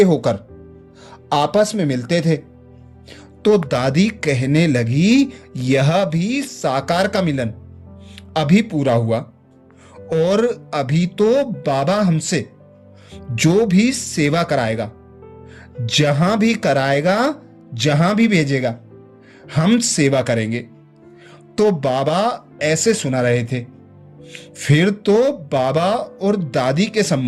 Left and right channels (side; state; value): both; identical; correlation 1.00